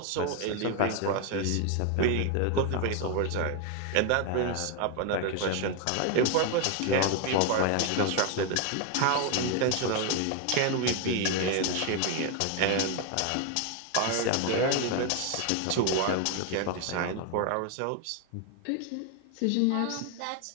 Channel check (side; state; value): both; different; correlation 0.01